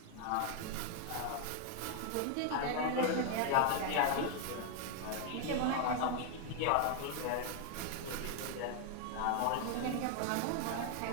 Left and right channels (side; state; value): both; different; correlation 0.00